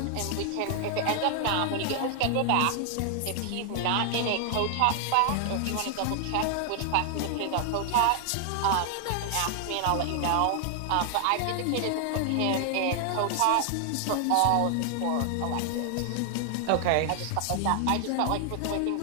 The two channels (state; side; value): different; both; correlation 0.00